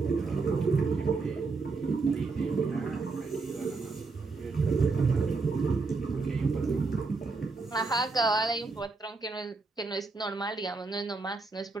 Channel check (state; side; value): quieter; left; 4.0 dB